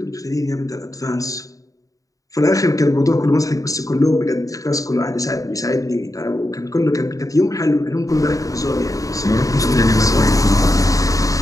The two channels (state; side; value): late; right; 0.16 ms